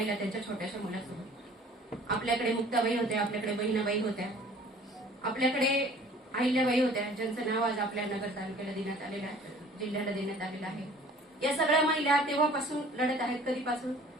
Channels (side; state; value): both; normal; correlation 0.50